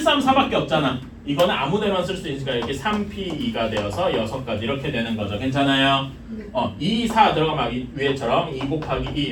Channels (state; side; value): identical; both; correlation 1.00